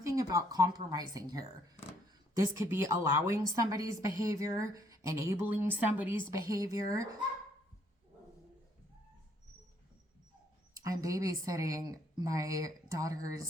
about compromising here. This could be allowing somebody's behavior, enabling somebody's behavior. I'm babysitting my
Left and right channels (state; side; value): normal; both; correlation 0.67